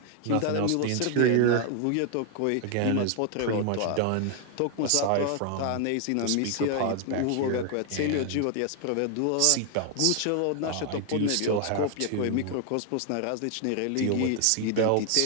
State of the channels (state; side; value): different; both; correlation 0.00